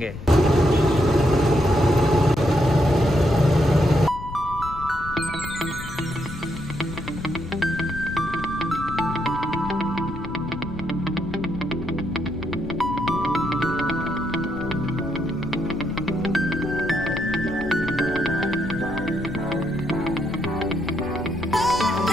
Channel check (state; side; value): noise; left; rumble, 11 dB below the sound